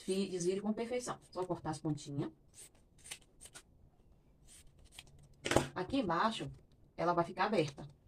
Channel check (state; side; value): identical; both; correlation 1.00